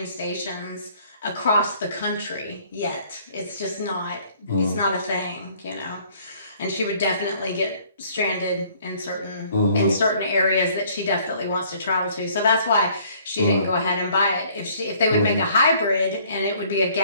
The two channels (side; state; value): both; inverted; correlation -0.59